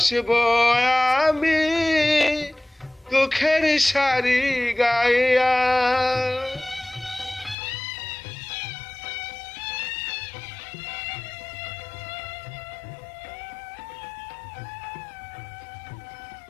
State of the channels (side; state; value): right; drops out; at 7.6 s